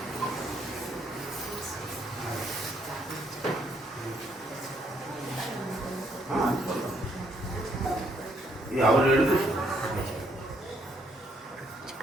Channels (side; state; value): both; normal; correlation 0.71